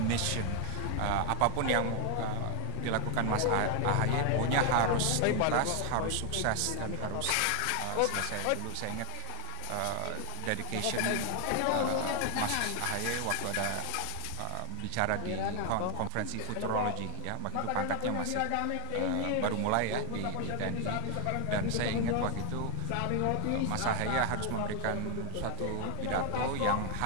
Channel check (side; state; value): both; different; correlation 0.00